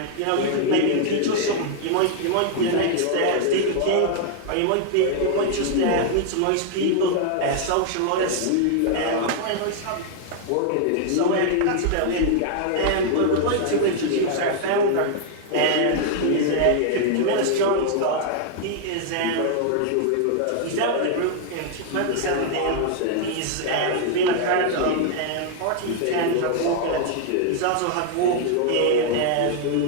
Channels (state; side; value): different; both; correlation 0.00